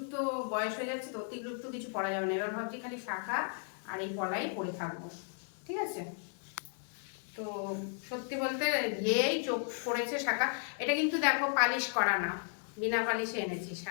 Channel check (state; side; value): silent; right; 55 dB below the other